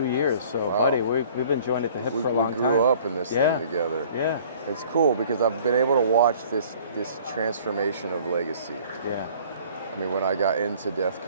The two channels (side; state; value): both; inverted; correlation -0.52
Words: years. So, Wow. buddy, we've been joined at the hip for a long We time. grew up in this Yeah. thing together. Yeah. It's cool because I've been able to watch this transformation of legacy. Yeah. I mean, when I got into death